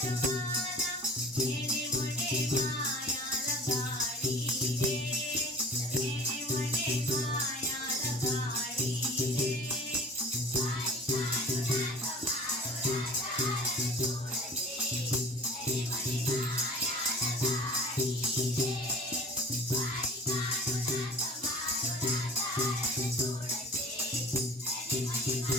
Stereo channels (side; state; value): both; normal; correlation 0.42